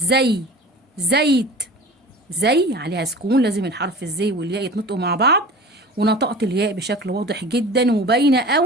زيت. زي عليها سكون، لازم الحرف الزي والياء يتنطقوا مع بعض، ونطقت الياء بشكل واضح جدا وباينه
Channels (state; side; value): normal; both; correlation 0.39